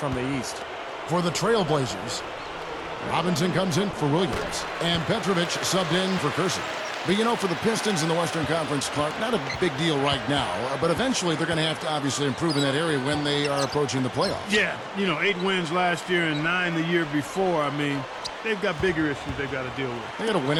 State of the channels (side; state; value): both; identical; correlation 1.00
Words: the East. For the Trailblazers, Robinson comes in for Williams, and Petrovic subbed in for Kersey. But, you know, for the Pistons in the Western Conference, Clark, not a big deal right now, but eventually they're going to have to obviously improve in that area when they are approaching the playoffs. Yeah, 8 wins last year and 9 the year before. I mean, they've got bigger issues they've got to deal with. They got to win